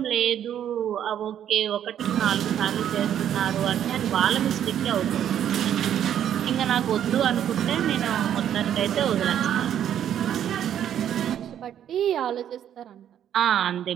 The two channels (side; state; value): left; quieter; 10.1 dB